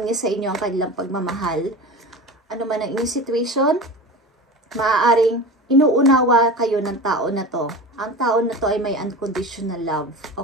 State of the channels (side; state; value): both; normal; correlation 0.31